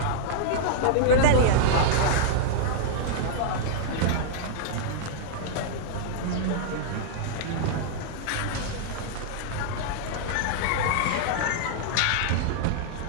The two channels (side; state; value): both; different; correlation -0.01